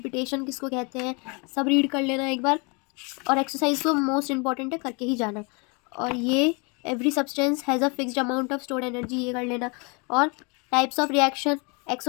किसको कहते हैं, सब रीड कर लेना एक बार। और एक्सरसाइज तो मोस्ट इंपॉर्टेंट है, करके ही जाना। और ये every substance has a fixed amount of stored energy, ये कर लेना। और types of reaction,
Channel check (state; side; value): quieter; right; 31.8 dB